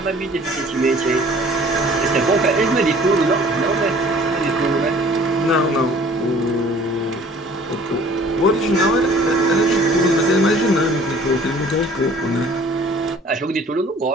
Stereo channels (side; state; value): both; normal; correlation 0.52